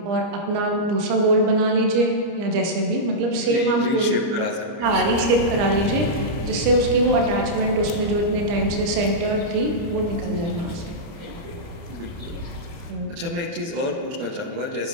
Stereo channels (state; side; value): late; left; 30 ms